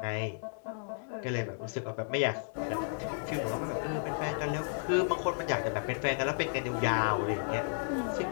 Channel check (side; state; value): right; silent; digital silence